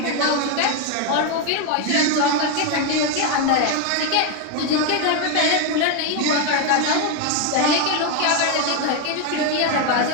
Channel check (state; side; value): different; both; correlation 0.01